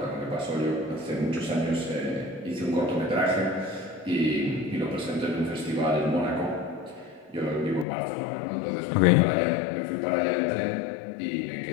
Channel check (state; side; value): drops out; right; at 7.9 s